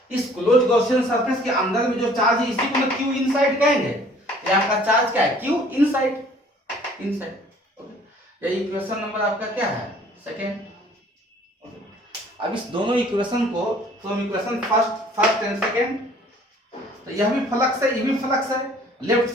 इस क्लोज गॉसियन सरफेस के अंदर में जो चार्ज है इसी को मैं Q इनसाइड कहेंगे। ये आपका चार्ज क्या है, क्यू इनसाइड, इनसाइड। ओके, ये इक्वेशन नंबर आपका क्या है, सेकेंड। अब इस दोनों इक्वेशन को from equation first and second, तो यह भी फ्लक्स है, ये भी फ्लक्स है, लेफ्ट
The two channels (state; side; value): normal; both; correlation 0.55